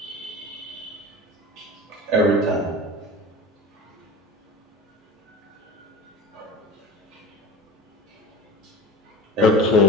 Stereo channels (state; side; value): normal; both; correlation 0.33